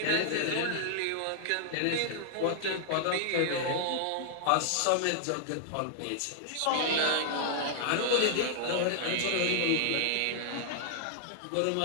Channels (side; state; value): both; different; correlation -0.01